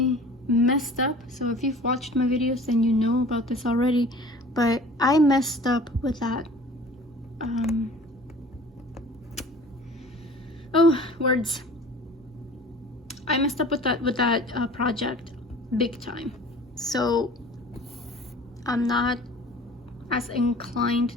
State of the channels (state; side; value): normal; both; correlation 0.45